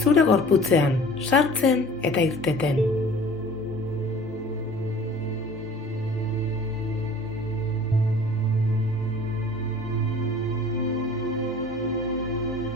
zure gorputzean sartzen eta irteten.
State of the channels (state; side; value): normal; both; correlation 0.46